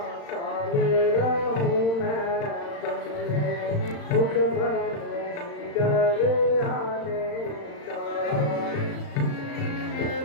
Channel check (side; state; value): right; late; 35 ms